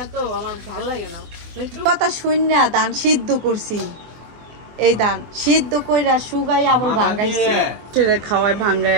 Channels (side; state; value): left; late; 24 ms